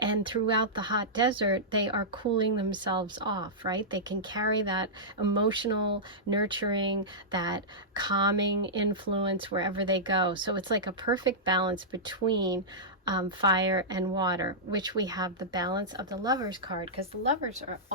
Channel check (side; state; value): both; normal; correlation -0.13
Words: throughout the hot desert, they are cooling themselves off, right? They can carry that emotional, nurturing, that calming influence wherever they go. So it's like a perfect balance between fire and water, which we have the balance of the Lovers card, because the Lovers are